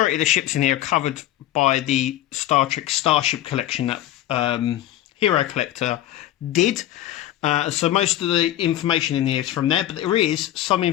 of the ships in here are covered by the Star Trek Starship collection that Hero Collector did. So most of the information in here is from there, but there is some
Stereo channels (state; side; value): quieter; right; 13.5 dB